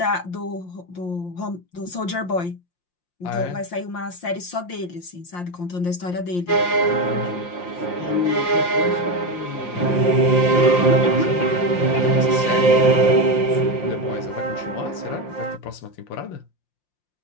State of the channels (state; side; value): late; right; 5.7 ms